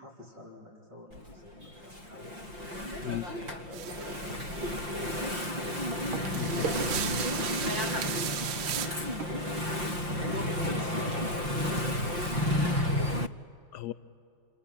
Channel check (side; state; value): left; late; 5.7 ms